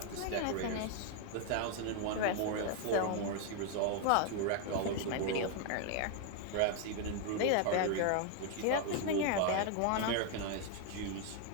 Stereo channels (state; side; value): different; both; correlation 0.00